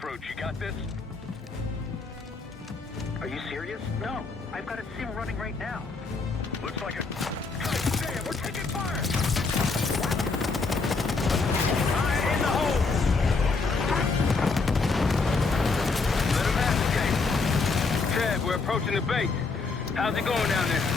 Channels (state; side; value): quieter; right; 4.2 dB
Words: You got this? Are you serious? No. I've got a sim running right now. Looks like a... God damn, we're taking fire! Fire in the hole! Let him have it, Ted, we're approaching the base. How's it going down there?